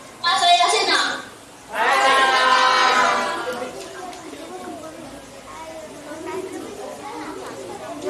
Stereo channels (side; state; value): both; identical; correlation 1.00